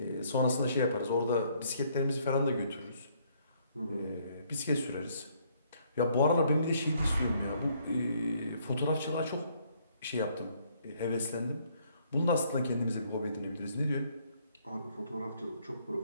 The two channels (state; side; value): inverted; both; correlation -0.67